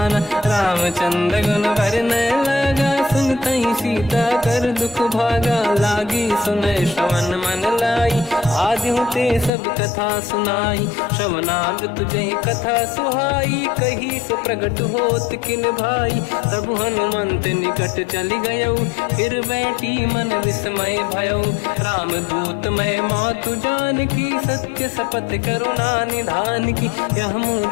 रामचंद्र गुण वर्णय लगा। सुनतहि सीता कर दुख भागा, लागी सुनय श्रवण मन लाई। आदि ते सब कथा सुनाई, श्रवनाद तुझे कथा सुहाई। कही से प्रगट होत किन भाई, तब हनुमंत निकट चली गयो। फिर बैठी मन विस्मय भयो, राम दूत मैं मातु जानकी। सत्य शपथ करुणा निधान की। यह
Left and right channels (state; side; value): drops out; right; at 9.5 s